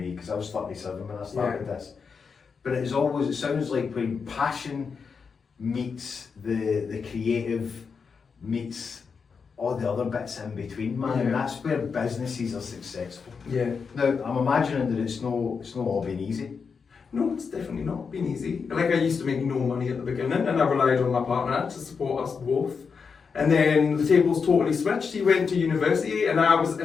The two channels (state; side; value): quieter; right; 5.6 dB